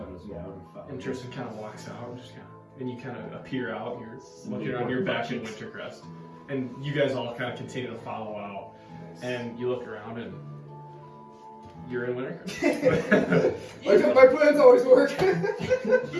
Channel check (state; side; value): identical; both; correlation 1.00